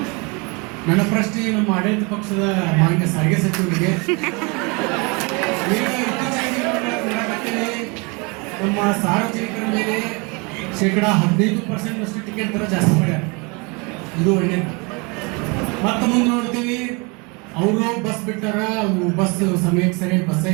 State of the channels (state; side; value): quieter; left; 29.8 dB